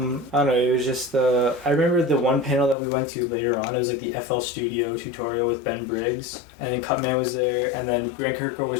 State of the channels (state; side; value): drops out; right; at 2.8 s